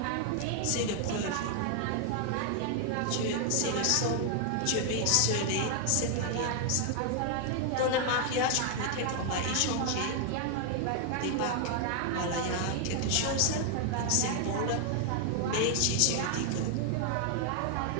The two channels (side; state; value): both; different; correlation 0.00